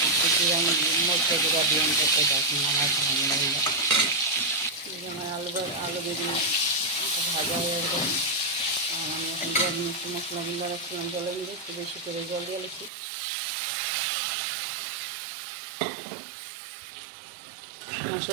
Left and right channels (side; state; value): left; drops out; at 12.9 s